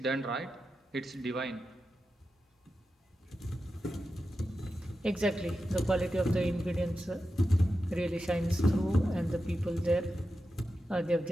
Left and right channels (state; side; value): normal; both; correlation 0.90